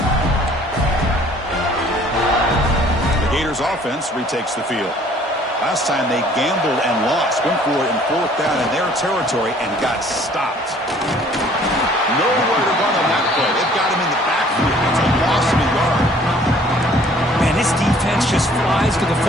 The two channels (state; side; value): normal; both; correlation 0.56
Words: The Gators offense retakes the field. Last time they gambled and lost. Went for it in fourth down in their territory and got stopped. Nowhere to run on that play. They've got him in the backfield. It's a loss of a yard. Man, this defense just flies to the